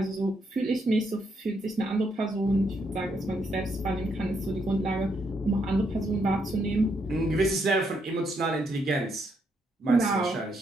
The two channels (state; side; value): normal; both; correlation 0.76